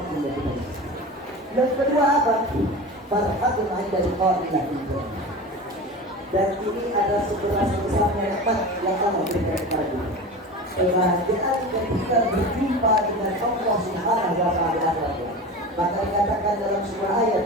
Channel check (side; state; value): both; normal; correlation 0.30